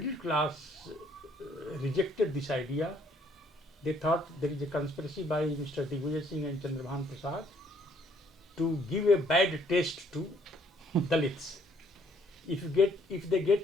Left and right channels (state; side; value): normal; both; correlation 0.65